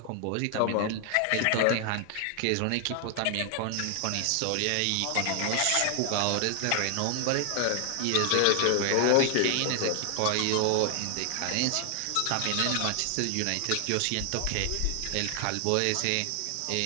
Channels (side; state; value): both; different; correlation 0.00